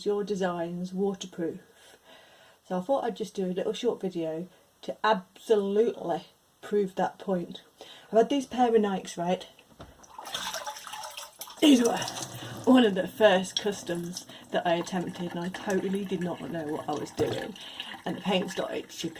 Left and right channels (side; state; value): both; identical; correlation 1.00